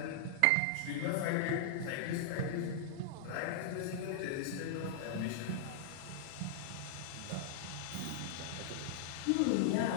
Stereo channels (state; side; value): different; both; correlation -0.01